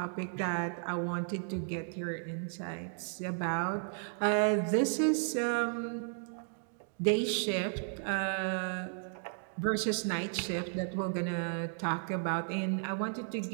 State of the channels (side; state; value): left; silent; digital silence